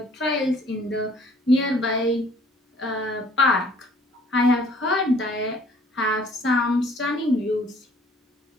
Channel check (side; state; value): both; normal; correlation 0.57